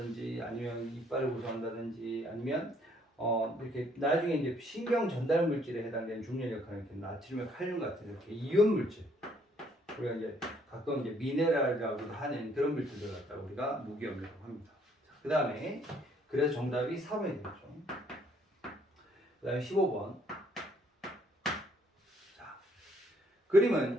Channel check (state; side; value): normal; both; correlation 0.65